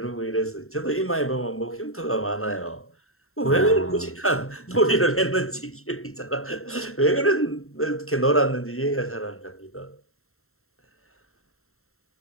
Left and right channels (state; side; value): late; right; 0.62 ms